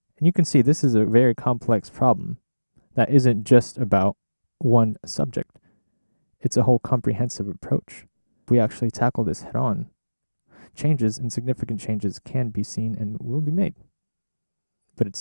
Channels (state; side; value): inverted; both; correlation -1.00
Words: And you can see this is a very complex problem that isn't just about one subject. It's a whole comprehensive approach. If we actually tackle this head on, changes and significant changes can be seen and will be made. But it